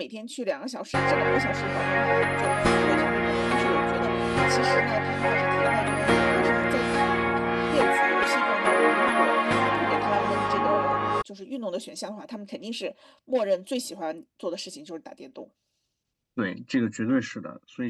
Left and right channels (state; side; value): identical; both; correlation 1.00